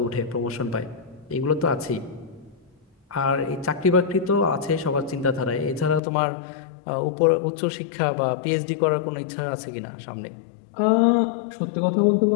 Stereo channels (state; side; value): drops out; right; at 6.0 s